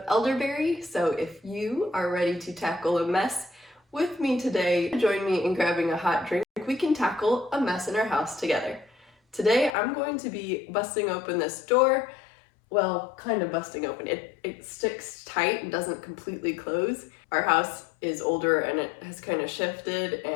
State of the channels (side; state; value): right; drops out; at 9.8 s